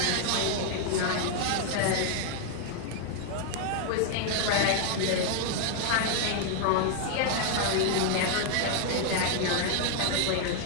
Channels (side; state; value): both; different; correlation 0.00